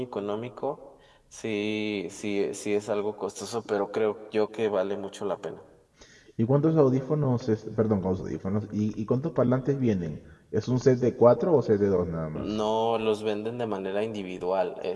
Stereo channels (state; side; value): identical; both; correlation 1.00